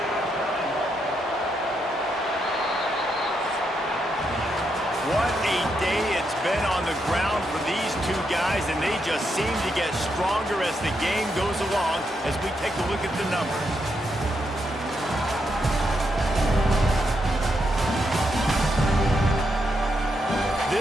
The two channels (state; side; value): normal; both; correlation 0.81